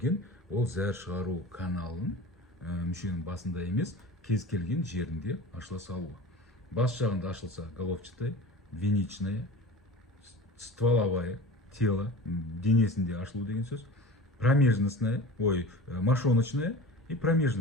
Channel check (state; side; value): normal; both; correlation 0.35